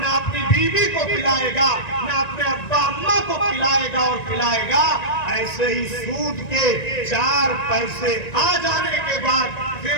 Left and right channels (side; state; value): right; late; 1.9 ms